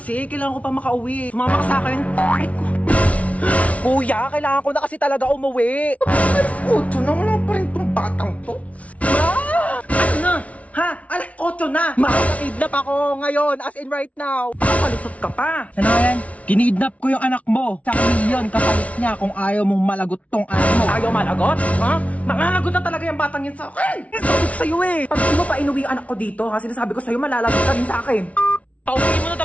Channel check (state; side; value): late; right; 0.066 ms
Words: Kailangan ko pa makauwi. Sumama ka sa akin. Ay, kuya, kailangan ko na kasi talaga umuwi. Alas 8 na, wala pa rin tong batang to. Ma! Ano na? Ha? Alas 8 na! Makakidnap ako ngayon, as in right now. Papalusot ka pa. Ano yan? Kinidnap ko yung anak mo. Sa milyon kapalit niya kung ayaw mong malagot tong anak mo. Ayaw malagot? Ha? Malalagot na talaga yung batang yun sa akin. Sabi ko sa'yo eh. Pag di mo pa inuwi yung anak ko dito, ha? Sinasabi ko sa'yo, malalagot ka rin sa akin. Pauwi mo na